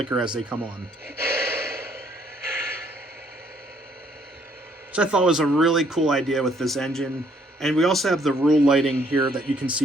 as they come on. Which I thought was a really cool idea with this engine. And we also have the rule lighting here that you can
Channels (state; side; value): normal; both; correlation 0.66